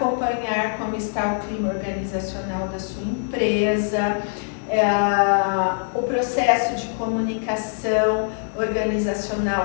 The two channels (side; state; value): right; silent; digital silence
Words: como está o clima organizacional da sua empresa, o processo de comunicação organizacional